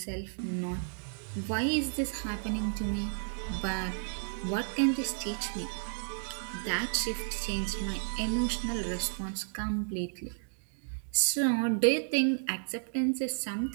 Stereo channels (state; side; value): silent; left; digital silence